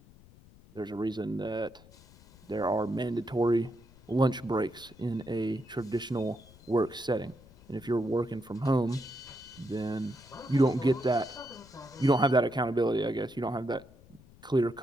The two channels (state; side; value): noise; left; rumble, 24 dB below the sound